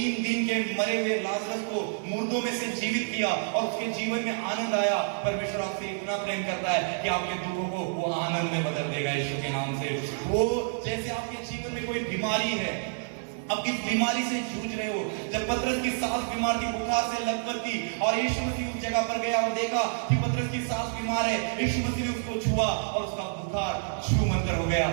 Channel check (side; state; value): left; silent; 59 dB below the other